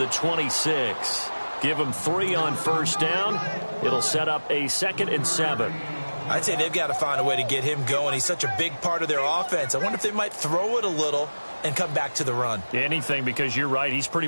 26. Give him 3 on first down. It'll set up a 2nd and 7. I'd say they've got to find a way to get him going. He's such a big part of their offense. I wonder if they might throw it a little and come back to the run. Anything, because you're right. He's pretty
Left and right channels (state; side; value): inverted; both; correlation -1.00